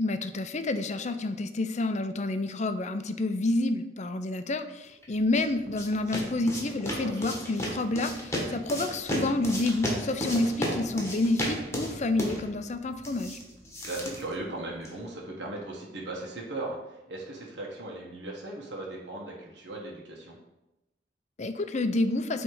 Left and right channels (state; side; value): normal; both; correlation 0.59